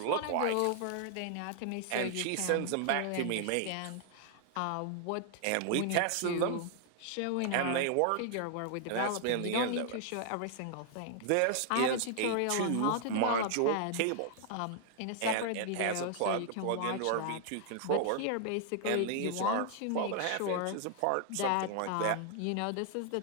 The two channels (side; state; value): both; different; correlation 0.00